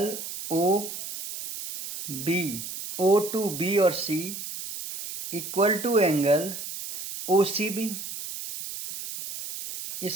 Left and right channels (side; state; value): right; noise; hiss, 8 dB below the sound